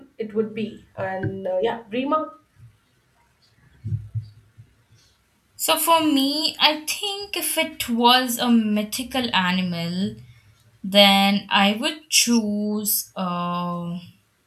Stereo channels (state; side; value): identical; both; correlation 1.00